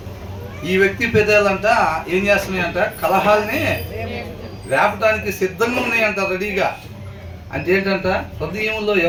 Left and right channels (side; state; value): both; identical; correlation 1.00